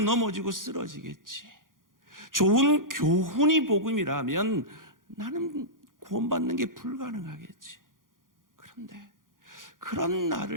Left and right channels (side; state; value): left; late; 0.90 ms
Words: 넘어지고 쓰러지겠지. 좋은 교훈이 복음이라면 나는 구원받는 게 불가능하겠지. 그런데 그런